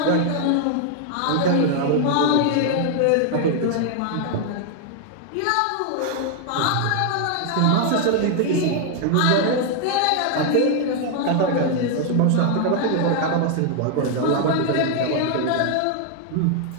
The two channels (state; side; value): different; both; correlation 0.00